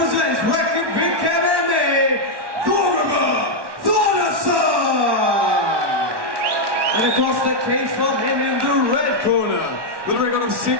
Reykjavik MMA, Thorgrimur Thordasson! And across the cage from him in the red corner, with a record of 6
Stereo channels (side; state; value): left; late; 1.1 ms